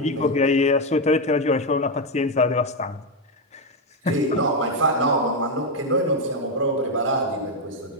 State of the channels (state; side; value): normal; both; correlation 0.06